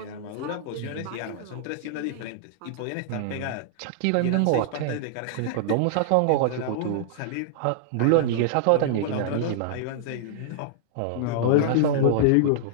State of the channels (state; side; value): different; both; correlation -0.01